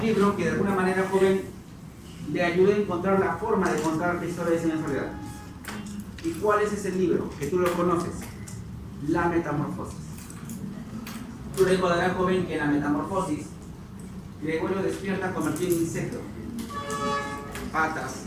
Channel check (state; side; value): identical; both; correlation 1.00